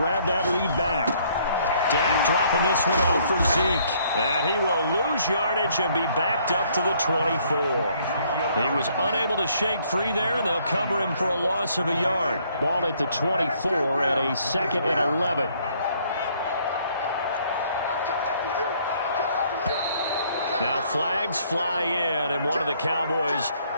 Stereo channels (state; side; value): inverted; both; correlation -0.65